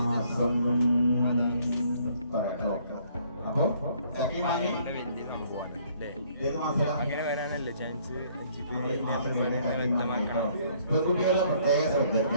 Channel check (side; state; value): both; inverted; correlation -0.63